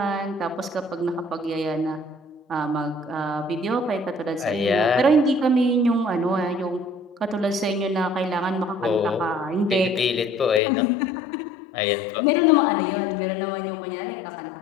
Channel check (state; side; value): drops out; right; at 10.6 s